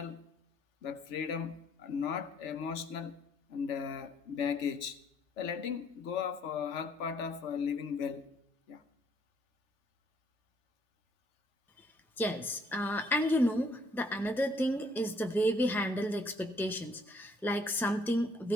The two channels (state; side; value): normal; both; correlation 0.66